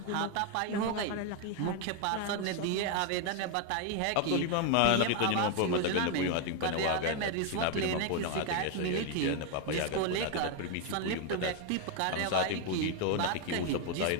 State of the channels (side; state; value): both; different; correlation 0.01